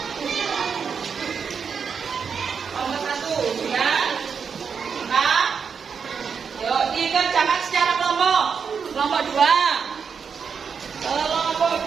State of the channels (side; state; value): left; quieter; 6.3 dB